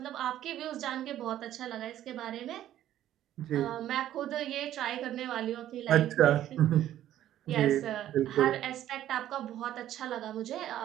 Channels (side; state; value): left; quieter; 12.3 dB